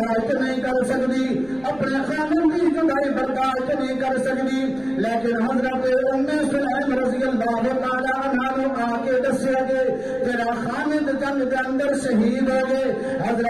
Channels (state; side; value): noise; left; rumble, 22 dB below the sound